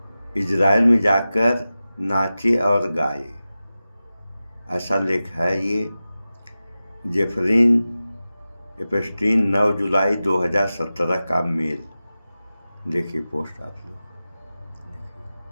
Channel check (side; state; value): both; inverted; correlation -0.95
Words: इजराइल में जाकर नाचे और गाए। ऐसा लेख है ये। जेफरीन एपस्टीन 9 जुलाई 2017 का मेल। देखिए पोस्ट आप लोग